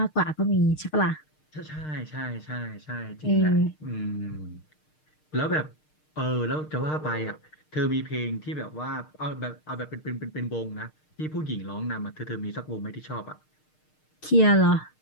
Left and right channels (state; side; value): late; right; 6.5 ms